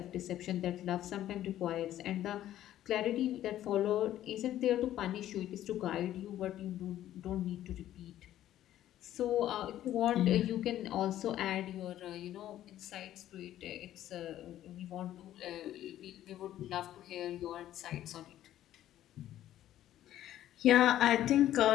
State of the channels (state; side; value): quieter; right; 12.6 dB